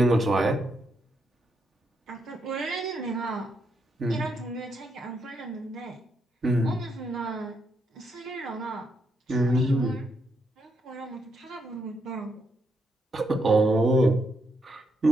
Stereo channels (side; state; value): both; normal; correlation 0.79